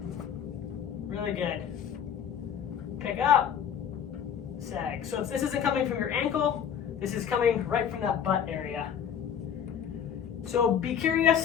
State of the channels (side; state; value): right; quieter; 8.5 dB